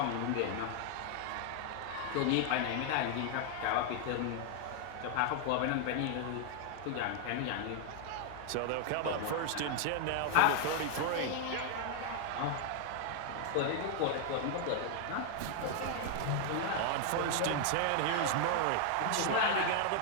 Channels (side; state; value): both; different; correlation 0.00